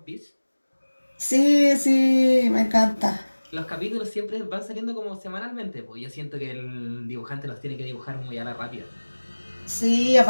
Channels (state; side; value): inverted; both; correlation -1.00